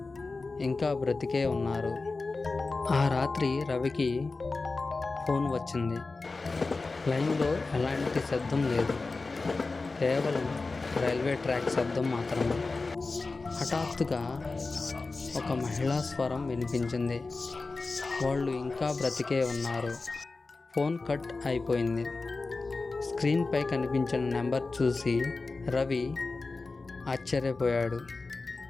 ఇంకా బ్రతికే ఉన్నారు. ఆ రాత్రి రవికి ఫోన్ వచ్చింది. లైన్లో ఎలాంటి శబ్దం లేదు, కేవలం రైల్వే ట్రాక్ శబ్దం మాత్రమే. హఠాత్తుగా ఒక మహిళా స్వరం వినిపించింది, వాళ్ళు ఇంకా బ్రతికే ఉన్నారు. ఫోన్ కట్ అయిపోయింది. స్క్రీన్పై కనిపించిన నెంబర్ చూసి రవి ఆశ్చర్యపోయాడు.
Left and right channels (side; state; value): right; quieter; 3.8 dB